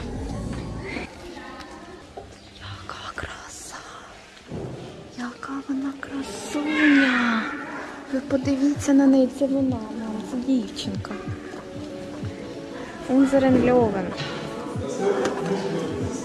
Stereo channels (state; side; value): identical; both; correlation 1.00